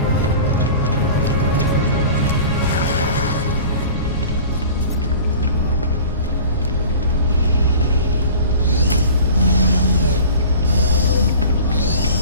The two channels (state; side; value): inverted; both; correlation -0.40